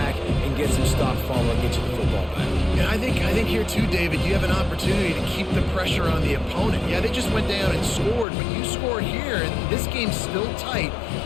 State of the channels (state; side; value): drops out; right; at 8.2 s